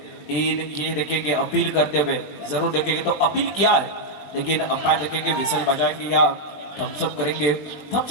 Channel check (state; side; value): late; right; 20 ms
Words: ये देखेंगे अपील करते हुए जरूर देखेंगे तो अपील किया है, लेकिन अंपायर देखेंगे विसल बजाएंगे या थम्सअप करेंगे.